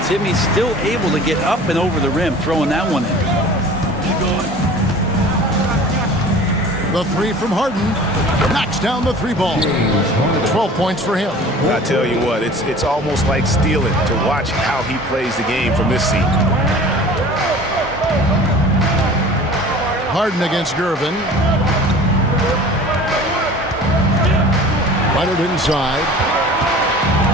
Timmy's still able to get up and over the rim, throwing that one in. The three from Harden knocks down the three ball. 12 points for him. I tell you what, it's almost like stealing to watch how he plays the game from this seat. Harden against Gervin. Leonard inside.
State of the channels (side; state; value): both; normal; correlation 0.43